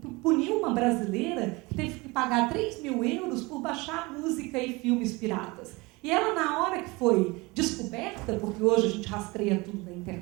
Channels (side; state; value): left; quieter; 24.3 dB